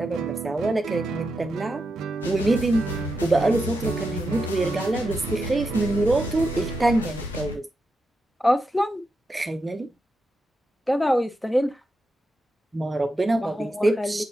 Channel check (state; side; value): normal; both; correlation 0.87